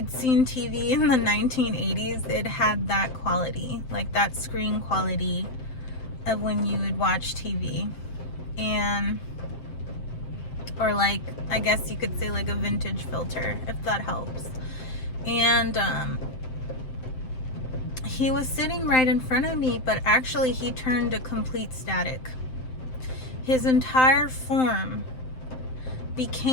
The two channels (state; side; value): late; right; 7.7 ms